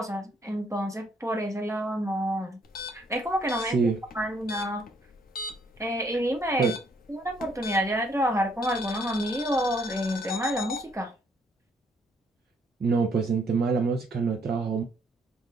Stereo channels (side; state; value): both; normal; correlation 0.68